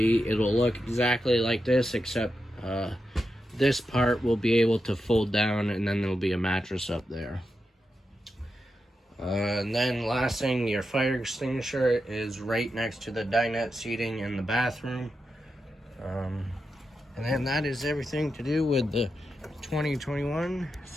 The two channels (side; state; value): both; normal; correlation 0.88